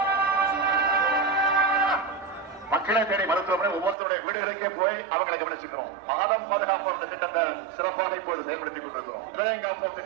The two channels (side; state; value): left; drops out; at 4.0 s